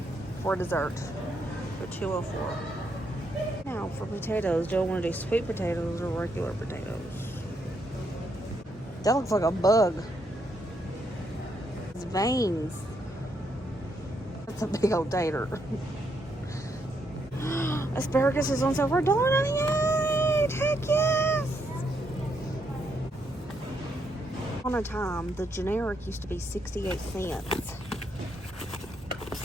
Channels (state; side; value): normal; both; correlation 0.77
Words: for dessert for $2.04. Now for potatoes, do I want to do sweet potatoes or regular potatoes? That looks like a bug. It's veins. That's a big old tater. Asparagus is on sale for $1.98. Heck yes! On a time, the generic used to be 68 cents.